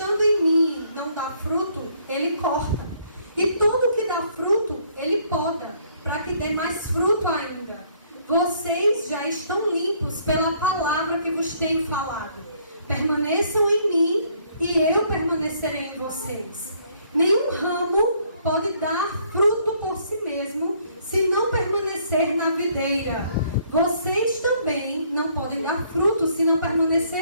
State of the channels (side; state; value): both; inverted; correlation -0.65